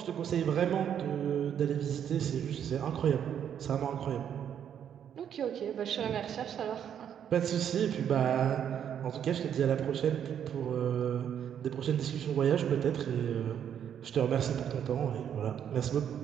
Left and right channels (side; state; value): left; quieter; 9.0 dB